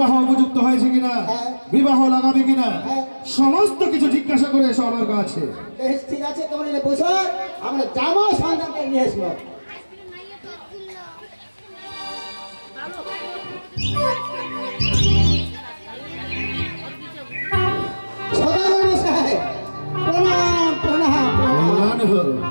উপযুক্ত হয়েছে কিনা, হ্যাঁ। বিবাহ লাগাবে কিনা, হ্যাঁ। সমস্ত কিছু জিজ্ঞাসা করে এসো আমার কাছে। বেশ ঠিক আছে, তোমরা এনে বসো, আমরা যাবো সন্তানকে নিয়ে আসবো। সদাগর সাহেব প্রণাম প্রণাম প্রণাম। কল্যাণ হোক।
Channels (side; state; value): both; inverted; correlation -1.00